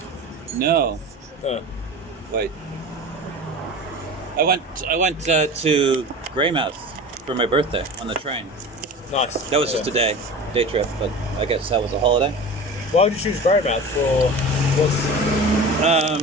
No. Wait. I went to Greymouth for my birthday on the train. Nice. That was just a day trip, but I guess that was a holiday. Why would you choose Greymouth for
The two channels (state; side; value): normal; both; correlation 0.34